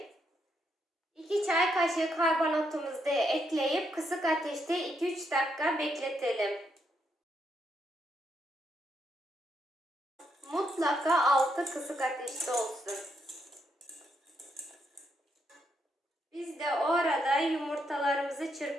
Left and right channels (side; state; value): both; normal; correlation 0.78